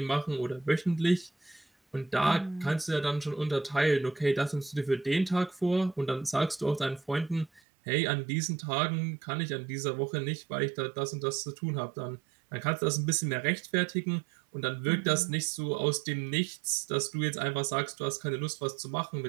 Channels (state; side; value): drops out; left; at 7.6 s